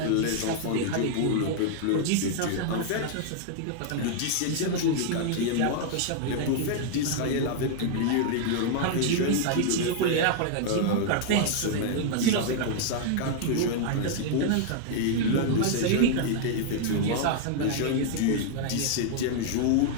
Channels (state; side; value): different; both; correlation -0.01